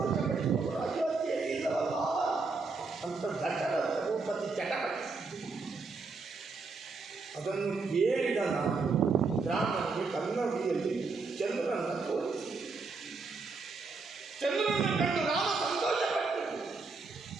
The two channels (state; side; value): quieter; left; 4.2 dB